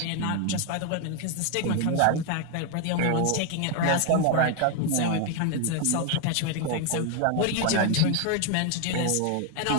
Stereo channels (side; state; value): both; different; correlation 0.01